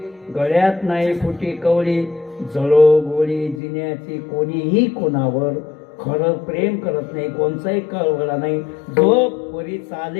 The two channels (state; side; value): drops out; right; at 3.6 s